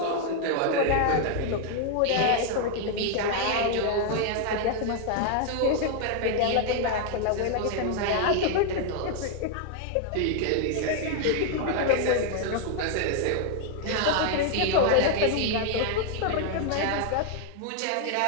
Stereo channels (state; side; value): different; both; correlation 0.00